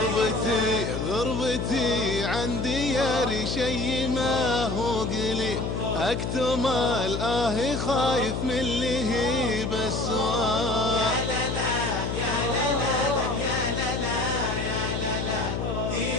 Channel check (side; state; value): left; noise; hum, 2 dB below the sound